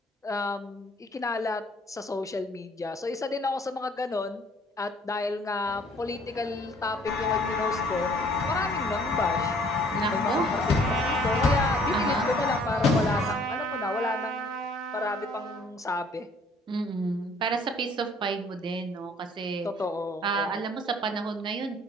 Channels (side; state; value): both; normal; correlation 0.58